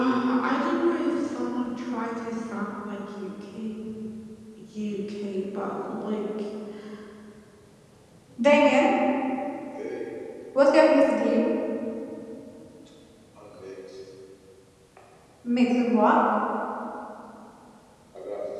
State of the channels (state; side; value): identical; both; correlation 1.00